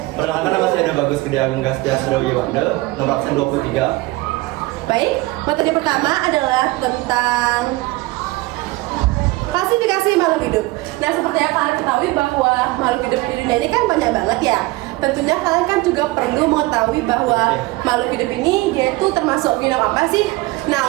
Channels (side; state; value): left; quieter; 21.0 dB